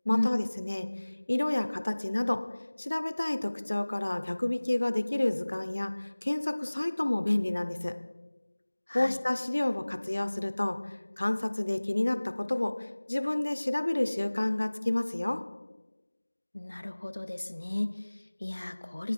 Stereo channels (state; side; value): inverted; both; correlation -1.00